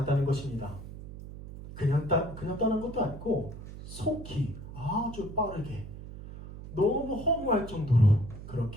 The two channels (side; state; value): right; noise; hum, 12 dB below the sound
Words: 것입니다. 그냥 떠난 것도 아니고 속히 아주 빠르게 너무 허무할 정도로